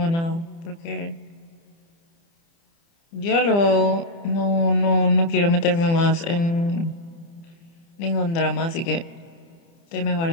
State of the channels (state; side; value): late; right; 30 ms